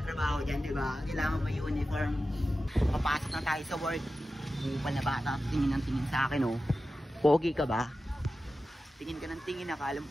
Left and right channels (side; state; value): both; normal; correlation 0.93